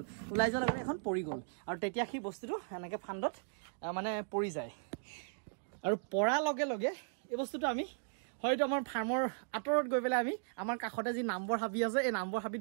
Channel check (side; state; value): left; silent; digital silence